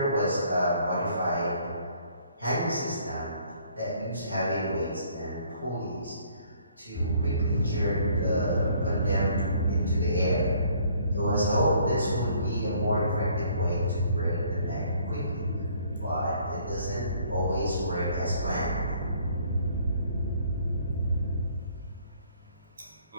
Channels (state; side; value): inverted; both; correlation -0.61